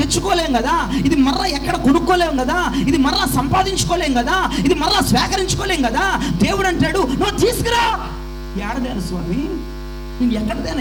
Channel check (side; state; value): both; identical; correlation 1.00